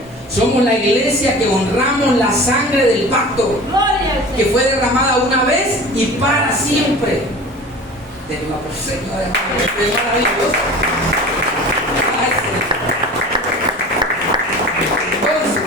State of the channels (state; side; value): normal; both; correlation 0.38